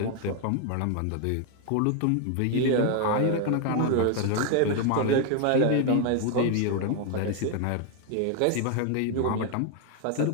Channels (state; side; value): different; both; correlation 0.01